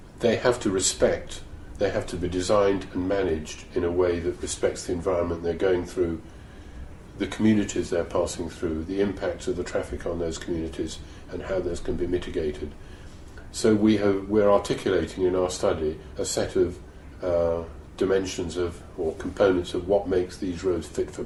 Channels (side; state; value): both; identical; correlation 1.00